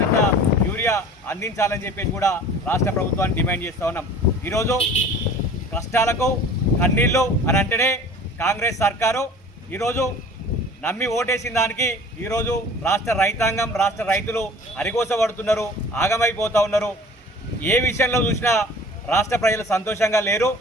యూరియా అందించాలని చెప్పేసి కూడా రాష్ట్ర ప్రభుత్వాన్ని డిమాండ్ చేస్తూ ఉన్నాం. ఈరోజు కష్టాలకు కన్నీళ్ళు అని అంటేనే కాంగ్రెస్ సర్కారు ఈరోజు నమ్మి ఓటేసిన దానికి ఈరోజు రాష్ట్ర రైతాంగం రాష్ట్ర రైతులు అరిగోసపడుతున్నారు, ఆగమైపోతూ ఉన్నారు. ఏ విషయంలో చూసినా రాష్ట్ర ప్రజలు సంతోషంగా లేరు.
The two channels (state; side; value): normal; both; correlation 0.45